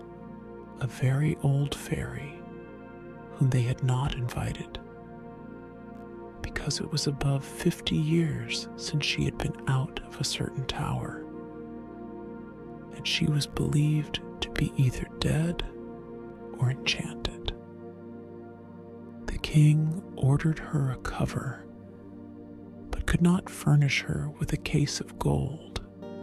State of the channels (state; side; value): identical; both; correlation 1.00